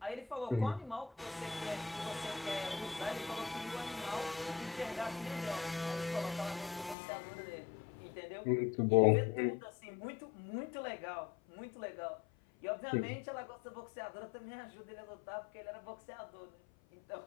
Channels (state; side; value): drops out; right; at 7.0 s